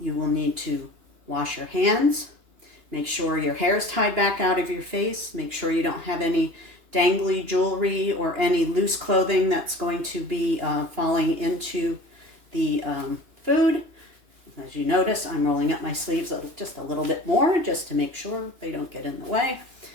will need to wash your hands. Make sure your hair is tied back out of your face. Make sure you don't have any dangly jewelry or any loose clothing that's going to be falling into the food. As you notice, I'm rolling up my sleeves just a little bit more just to make sure they don't get in the way.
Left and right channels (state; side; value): late; left; 2.9 ms